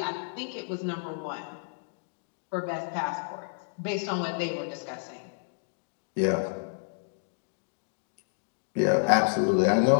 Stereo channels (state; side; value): silent; right; digital silence